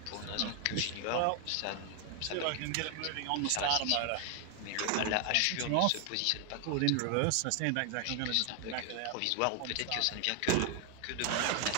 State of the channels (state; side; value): different; both; correlation 0.00